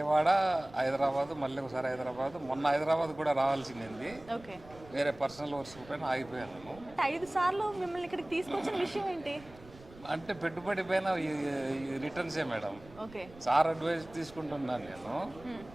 హైదరాబాద్, మళ్ళీ ఒకసారి హైదరాబాద్, మొన్న హైదరాబాద్ కూడా రావాల్సింది. ఓకే, వేరే పర్సనల్ వర్క్స్ పైన ఆగిపోయాను. అంటే 5 సార్లు మిమ్మల్ని ఇక్కడికి తీసుకొచ్చిన విషయం ఏంటి? అంటే పెట్టుబడి పైన ఈ రిటర్న్సే మేడం. ఓకే. సార్ అడ్వైస్ తీసుకుంటున్నాను నేను.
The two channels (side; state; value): right; noise; rumble, 21 dB below the sound